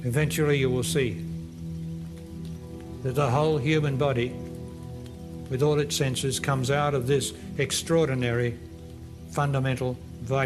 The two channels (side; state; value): both; identical; correlation 1.00